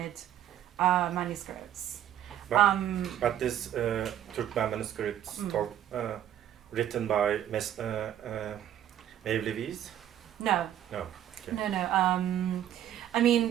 manuscripts. But this Turkmen manuscripts written by Mevlevis? No. No. Okay. No. I mean,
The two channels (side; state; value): left; quieter; 11.0 dB